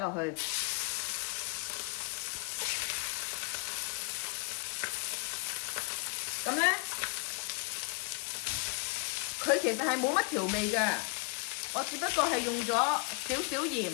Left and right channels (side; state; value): right; quieter; 31.0 dB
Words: 去。咁咧，佢其實係冇乜調味嘅，我只不過係用咗少少鹽、